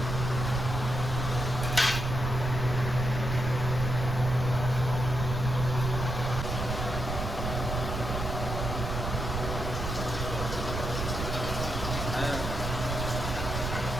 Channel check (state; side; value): noise; right; rumble, 3 dB below the sound